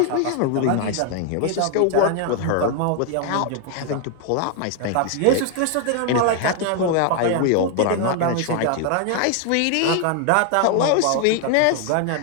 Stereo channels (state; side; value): different; both; correlation 0.00